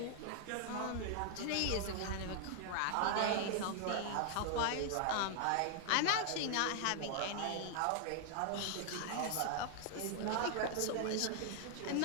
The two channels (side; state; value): both; different; correlation 0.00